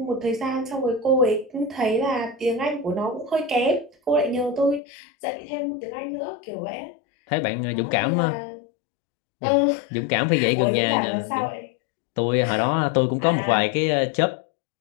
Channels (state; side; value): drops out; right; at 4.8 s